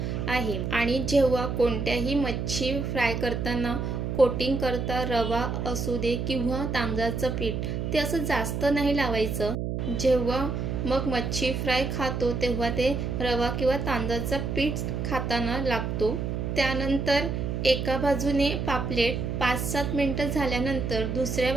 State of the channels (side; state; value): right; noise; hum, 2 dB below the sound